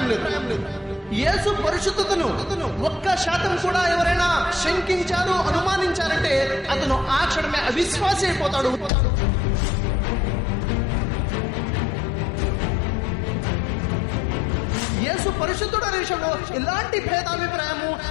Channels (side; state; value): right; drops out; at 8.9 s